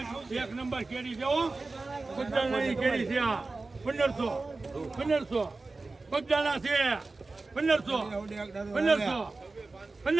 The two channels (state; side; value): quieter; left; 3.5 dB